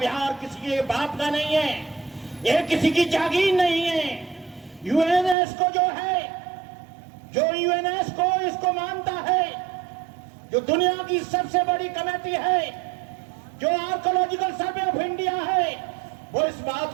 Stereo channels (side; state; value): left; drops out; at 5.4 s